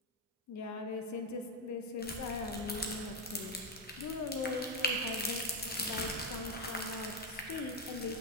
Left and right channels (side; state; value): both; normal; correlation 0.05